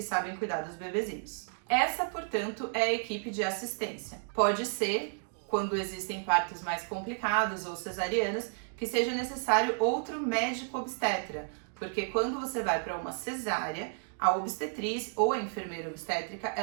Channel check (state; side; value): silent; left; 56 dB below the other